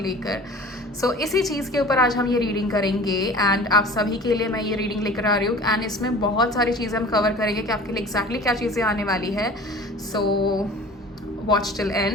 सो इसी चीज़ के ऊपर आज हम ये रीडिंग करेंगे एंड आप सभी के लिए मैं ये रीडिंग लेकर आ रही हूँ। एंड इसमें बहुत सारी चीज़ें हम कवर करेंगे कि आपके लिए एग्जैक्टली क्या चीज़ें आने वाली है। So watch till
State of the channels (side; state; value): both; normal; correlation 0.42